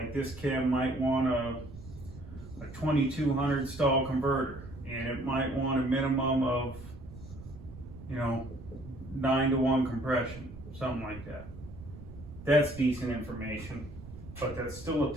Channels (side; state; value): right; noise; rumble, 14 dB below the sound